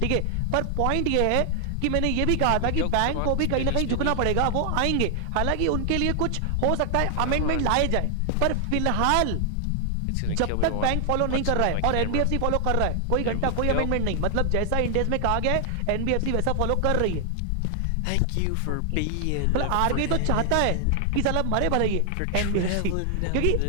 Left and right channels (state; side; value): different; both; correlation 0.00